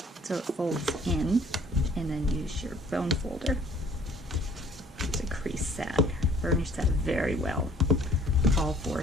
so it folds in, and then use your bone folder to crease that. Burnish that very well, all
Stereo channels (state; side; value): normal; both; correlation 0.55